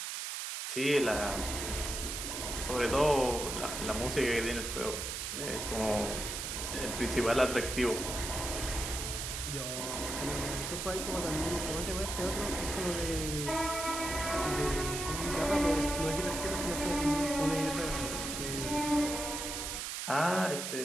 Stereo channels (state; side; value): noise; right; hiss, 4 dB below the sound